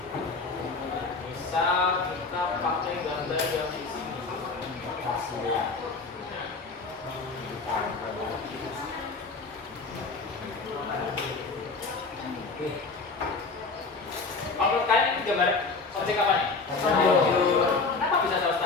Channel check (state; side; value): quieter; right; 4.1 dB